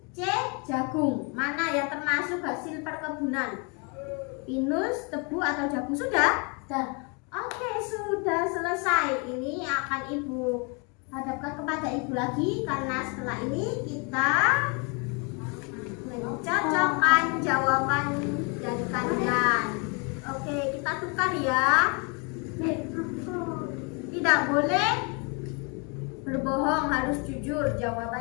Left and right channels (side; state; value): right; quieter; 33.5 dB